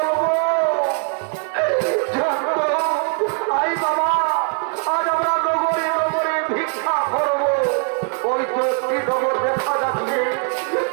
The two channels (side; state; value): left; quieter; 39.4 dB